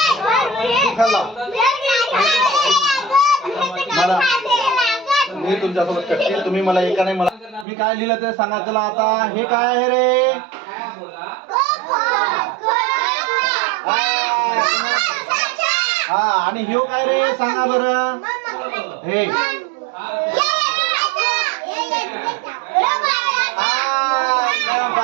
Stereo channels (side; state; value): left; drops out; at 7.7 s